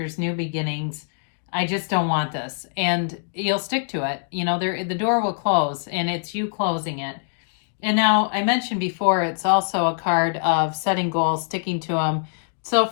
new beginnings. I just don't want this. And you'll stick to it. You know, the door will close and it's you closing it. And now I mentioned before, it's also a card of setting goals, sticking to them. So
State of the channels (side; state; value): right; silent; digital silence